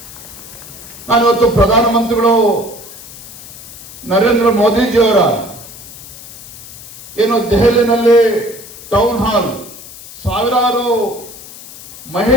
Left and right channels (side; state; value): left; noise; hiss, 16 dB below the sound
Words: ನಾನಿವತ್ತು ಪ್ರಧಾನಮಂತ್ರಿಗಳು ನರೇಂದ್ರ ಮೋದಿಜಿಯವರ ಏನು ದೆಹಲಿನಲ್ಲಿ ಟೌನ್ ಹಾಲ್ ಸಾವಿರಾರು